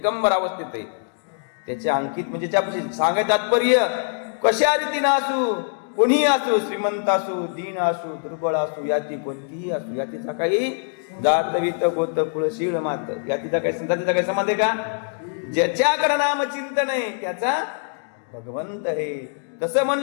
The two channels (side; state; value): right; silent; digital silence